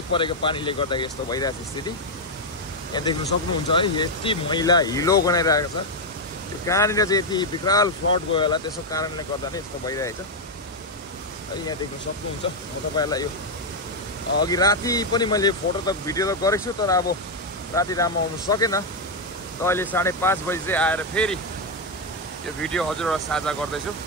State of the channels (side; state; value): both; normal; correlation 0.02